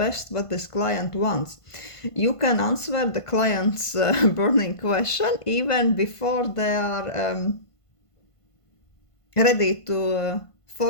what this client wants. You can answer the client's burning question even before they are ready to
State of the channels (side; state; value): right; late; 1.5 ms